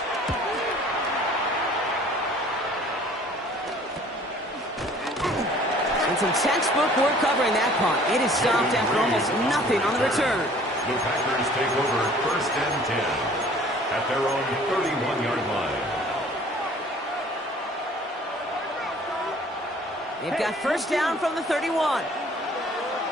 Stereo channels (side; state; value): both; normal; correlation 0.52